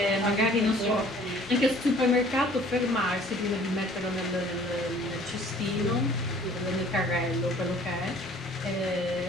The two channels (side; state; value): both; normal; correlation 0.53